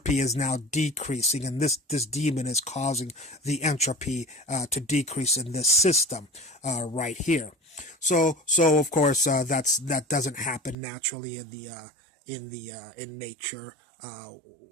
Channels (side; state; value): left; drops out; at 10.8 s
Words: is now decreasing, and this demon is causing the entropy to decrease in this system right here. So of course that doesn't happen naturally in nature,